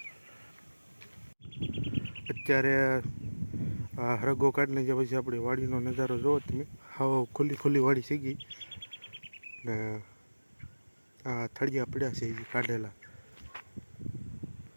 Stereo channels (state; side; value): inverted; both; correlation -1.00